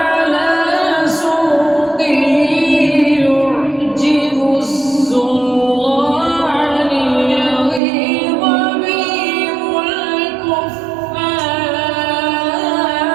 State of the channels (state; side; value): drops out; left; at 7.8 s